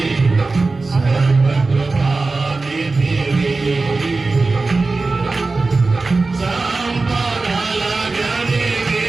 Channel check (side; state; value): left; quieter; 3.7 dB